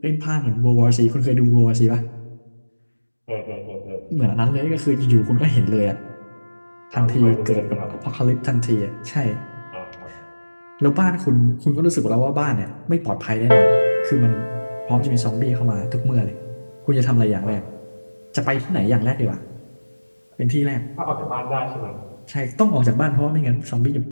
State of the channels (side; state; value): both; inverted; correlation -1.00